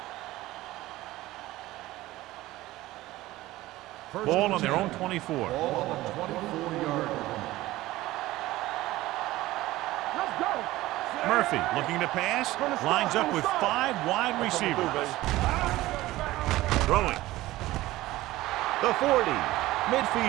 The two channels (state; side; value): quieter; left; 17.2 dB